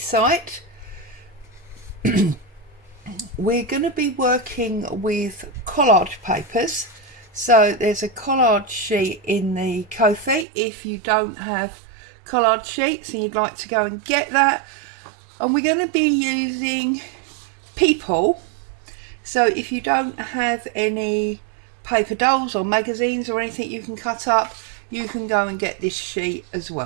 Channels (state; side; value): drops out; left; at 10.5 s